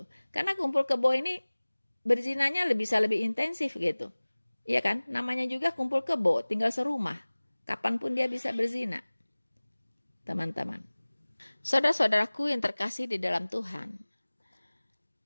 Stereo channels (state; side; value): inverted; both; correlation -1.00